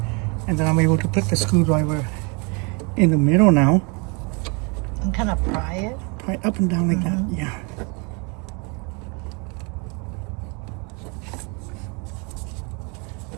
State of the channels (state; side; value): quieter; left; 32.3 dB